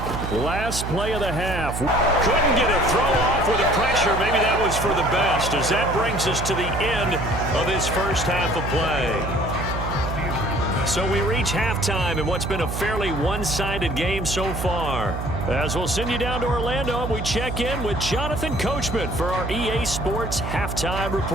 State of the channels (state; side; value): noise; right; hum, 5 dB below the sound